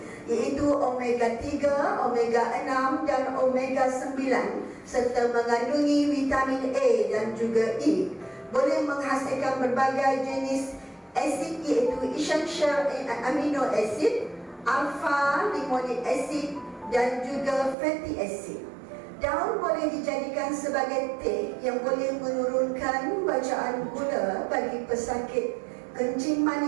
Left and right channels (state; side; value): drops out; left; at 17.8 s